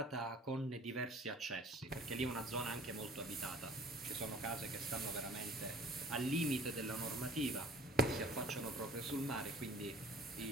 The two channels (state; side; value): normal; both; correlation 0.49